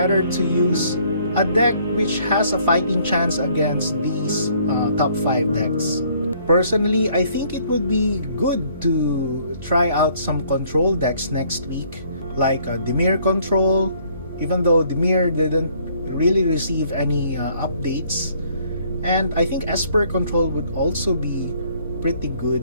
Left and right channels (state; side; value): inverted; both; correlation -0.62